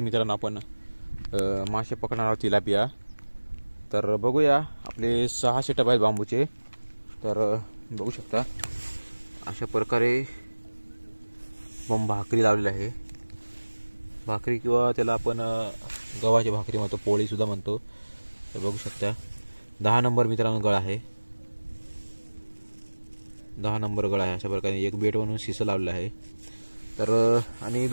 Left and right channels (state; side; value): inverted; both; correlation -1.00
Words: मित्रांनो आपण मासे पकडणार आहोत, तिलापिया. तर बघूया, आपले 6 सेटअप आहेत बांबूचे. तर बघू शकता अशा प्रकारे भाकरी लावलेली आहे. भाकरी किंवा त्याला आपण गव्हाची भाकरी म्हणतो, पोळी सुद्धा म्हणतो. तर बघू शकता 10 नंबर मित्रांनो गळ आहे. 10 नंबर गळ आहे. अशा प्रकारे एक बेट म्हणून शिसं लावलेलं आहे. तर आणि